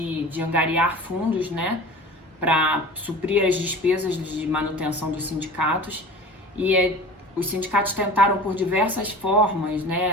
angariar fundos, né, para suprir as despesas de manutenção dos sindicatos. E os sindicatos tentaram por diversas formas,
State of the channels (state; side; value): normal; both; correlation 0.38